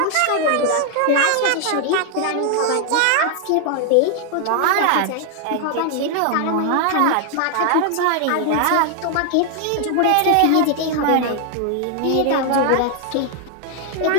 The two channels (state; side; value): different; both; correlation 0.00